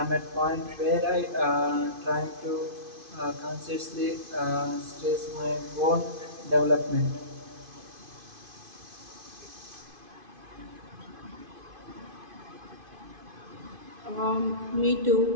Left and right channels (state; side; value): late; left; 2.5 ms